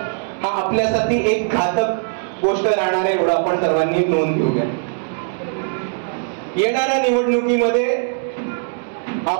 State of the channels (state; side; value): silent; left; 66 dB below the other